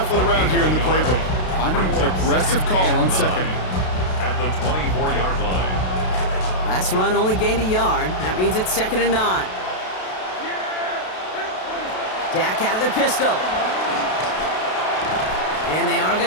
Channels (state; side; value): late; right; 32 ms